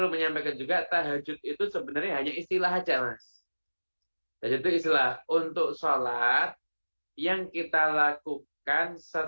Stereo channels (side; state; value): both; inverted; correlation -1.00